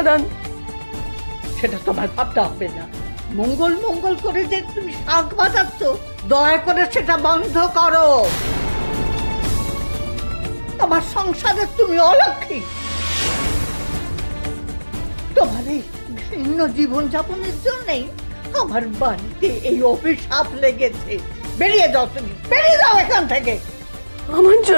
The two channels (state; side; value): inverted; both; correlation -1.00